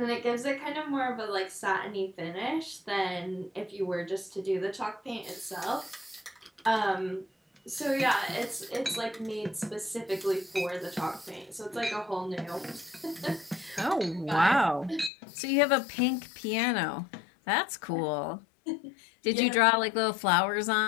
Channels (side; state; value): right; drops out; at 15.1 s